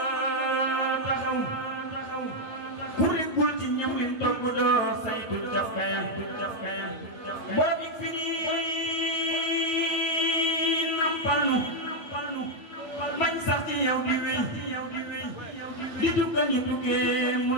taxaw ku rikkul ci ñam lim togg doo saytu cafkaya borom yi firi nampal nu bañ sax ci yow di wéy di tukkal ñu tukkee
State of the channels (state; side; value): late; right; 8.9 ms